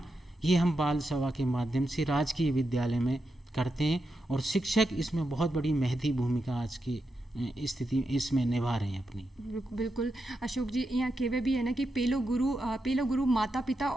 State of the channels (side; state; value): both; normal; correlation 0.86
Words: ये हम बाल सभा के माध्यम से राजकीय विद्यालय में करते हैं। और शिक्षक इसमें बहुत बड़ी महती भूमिका आज की स्थिति इसमें निभा रहे हैं अपनी। बिल्कुल अशोक जी, यहाँ केवे भी है ना कि पहलो गुरु माता पिता